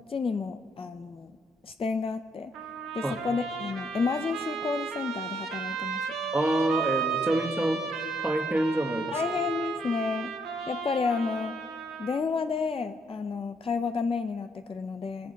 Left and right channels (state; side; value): normal; both; correlation 0.72